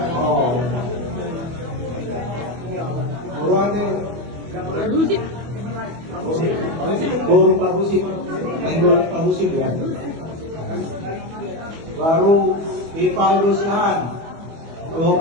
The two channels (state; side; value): late; left; 25 ms